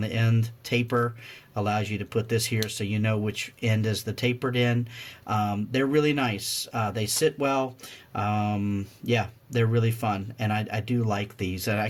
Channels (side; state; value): both; identical; correlation 1.00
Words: end. Taper allows you to put this here so you know which end is the tapered end. They're really nice. They sit well. Yeah, they're really fun, and I do like these. And I